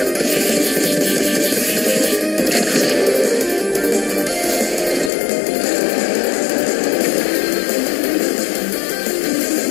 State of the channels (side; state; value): right; drops out; at 5.1 s